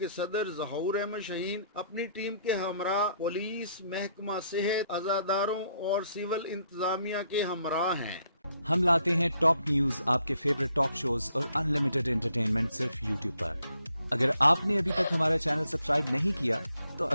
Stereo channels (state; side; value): inverted; both; correlation -0.71